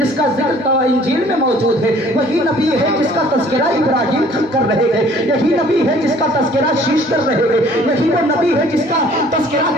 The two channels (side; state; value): both; normal; correlation 0.55